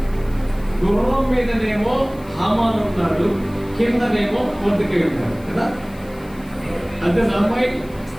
గుర్రం మీదనేమో హామాను ఉన్నాడు, కిందనేమో మొర్దెకై ఉన్నాడు కదా. అంతే అమ్మాయి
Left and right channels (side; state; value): left; noise; hiss, 25 dB below the sound